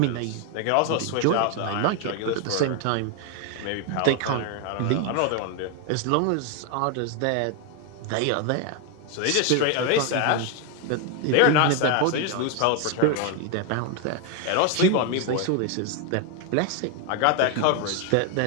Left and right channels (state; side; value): different; both; correlation 0.01